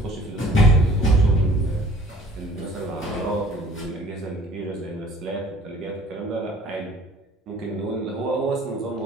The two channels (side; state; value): both; normal; correlation 0.52